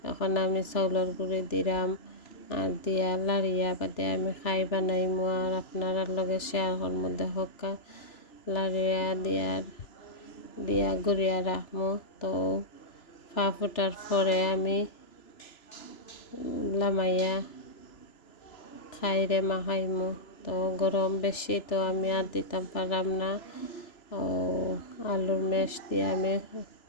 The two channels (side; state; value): right; late; 3.0 ms